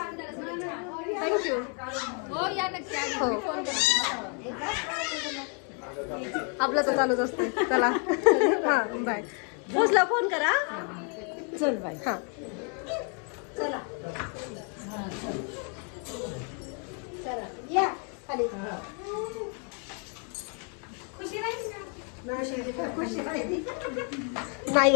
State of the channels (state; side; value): quieter; right; 39.6 dB